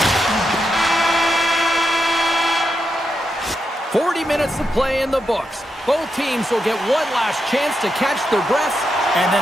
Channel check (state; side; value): normal; both; correlation 0.84